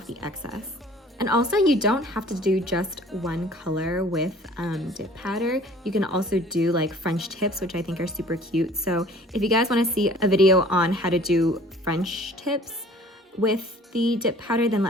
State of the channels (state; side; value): normal; both; correlation 0.51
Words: the excess. And also, you don't have to do just one color with dip powder. You can also do like French tips, which I think are super cute. So if you guys want to see a video on how to do French tips with the dip powder, then